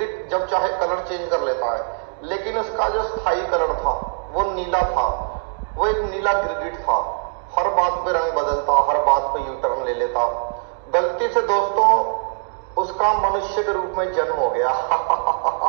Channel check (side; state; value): left; silent; digital silence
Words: जब चाहे कलर चेंज कर लेता है, लेकिन उसका जो स्थायी कलर था वो नीला था। वो एक नीला गिरगिट था, हर बात पे रंग बदलता, हर बात पे यू टर्न ले लेता। गलती से दोस्तों उसका मनुष्य के रूप में जन्म हो गया।